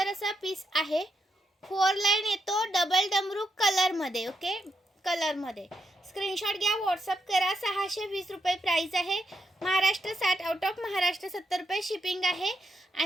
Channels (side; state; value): both; normal; correlation 0.81